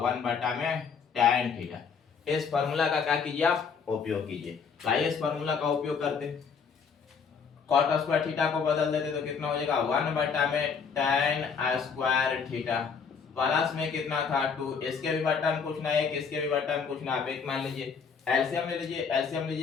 1 बटा में tan थीटा। इस फार्मूला का क्या कीजिए आप उपयोग कीजिए, आइए इस फार्मूला का उपयोग करते, cot स्क्वायर थीटा को बदल देते तो कितना हो जाएगा 1 बटा में tan स्क्वायर थीटा प्लस में कितना था 2, इसके भी बटा में पूछना है, इसके भी बटा में पूछना, आप एक मान लीजिए एलसीएम ले लीजिए, एलसीएम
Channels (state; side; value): quieter; right; 6.0 dB